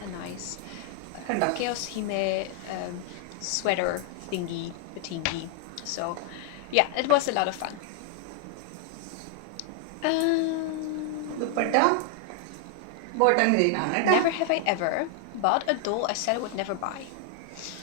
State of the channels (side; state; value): both; different; correlation 0.00